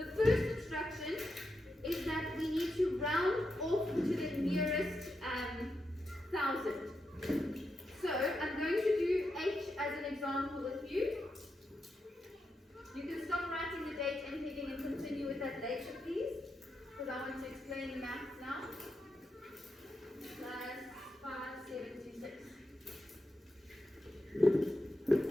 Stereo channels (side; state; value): both; normal; correlation 0.85